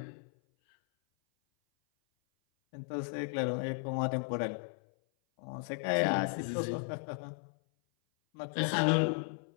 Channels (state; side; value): silent; right; 55 dB below the other